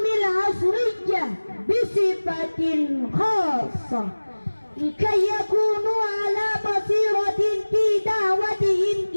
العصرية بصفة خاصة، لكي يكونوا على بصيرة في دعوتهم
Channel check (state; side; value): inverted; both; correlation -1.00